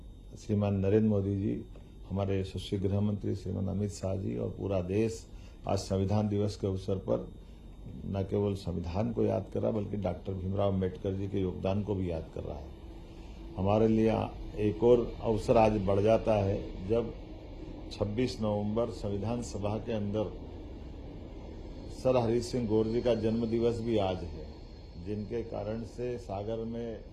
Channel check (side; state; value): both; identical; correlation 1.00